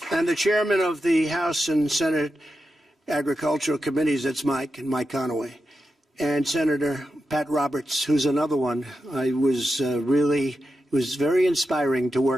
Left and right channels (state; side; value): normal; both; correlation 0.89